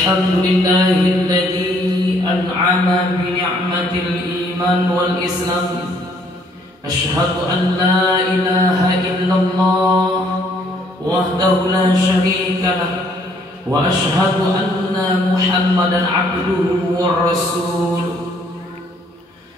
an'ama bi ni'matil iman wal islam. Asyhadu an la ilaha illallah wahdahu la syarika lah wa asyhadu anna Muhammadan abduhu wa rasuluh.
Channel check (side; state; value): both; normal; correlation 0.65